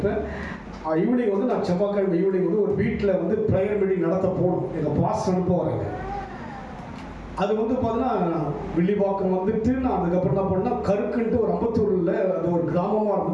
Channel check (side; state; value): both; identical; correlation 1.00